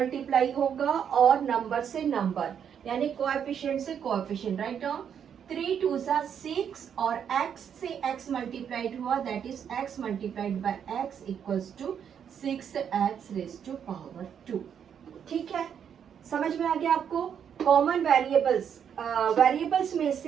होगा और नंबर से नंबर, यानी कोएफिशिएंट से कोएफिशिएंट। राइट डाउन 3 2 6 और x से x मल्टीप्लाइड हुआ, that is x multiplied by x equals to 6x raise to power 2। ठीक है, समझ में आ गया आपको। कॉमन वेरिएबल्स में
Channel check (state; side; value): quieter; left; 8.1 dB